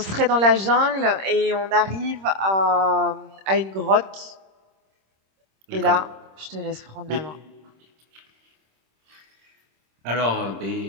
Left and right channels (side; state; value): left; late; 26 ms